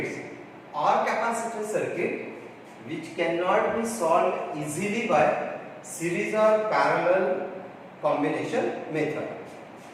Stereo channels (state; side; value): identical; both; correlation 1.00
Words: or capacitor circuit which cannot be solved easily by series or parallel combination method.